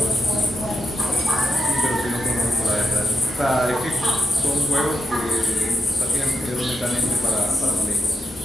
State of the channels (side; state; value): both; normal; correlation 0.85